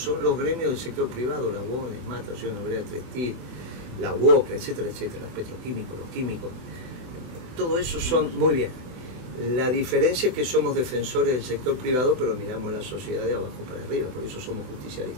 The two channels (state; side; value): late; left; 24 ms